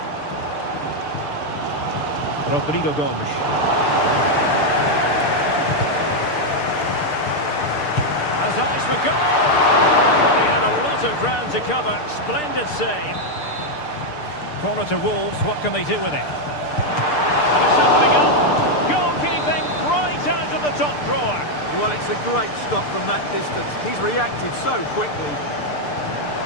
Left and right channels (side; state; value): right; late; 6.7 ms